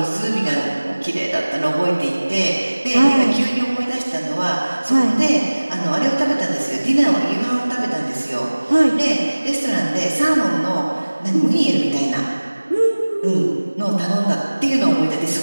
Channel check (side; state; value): both; inverted; correlation -1.00